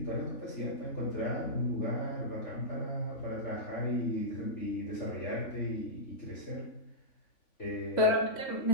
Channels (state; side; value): late; right; 3.5 ms